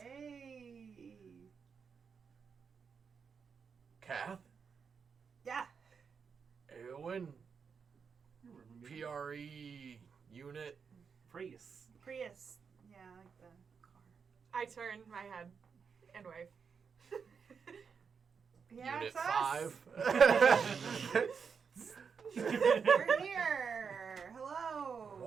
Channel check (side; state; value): left; quieter; 6.1 dB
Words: Kath, Yeah. Eowyn, You remember me? PRE unit. Prius. Prius. Yeah, I like the car. I turn my head and wave. Yeah, Unit it's us. 5. We're here. Hello.